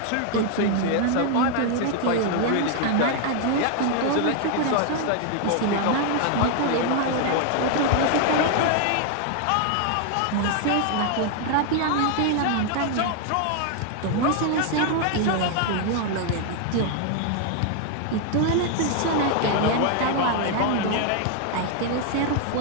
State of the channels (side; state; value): both; different; correlation 0.00